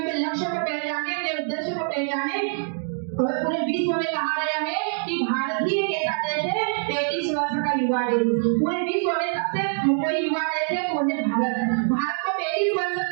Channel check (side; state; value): left; silent; 60 dB below the other